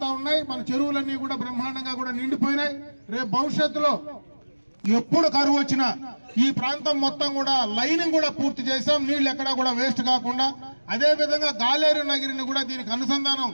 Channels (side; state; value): both; inverted; correlation -1.00